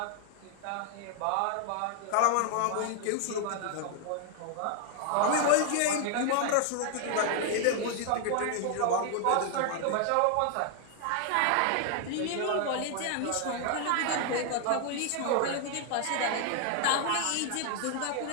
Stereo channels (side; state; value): both; different; correlation 0.00